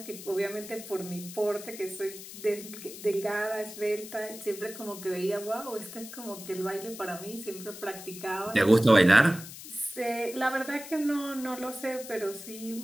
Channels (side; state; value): left; noise; hiss, 13 dB below the sound